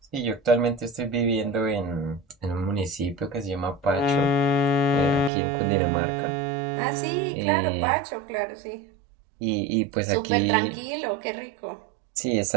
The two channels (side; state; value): left; drops out; at 5.3 s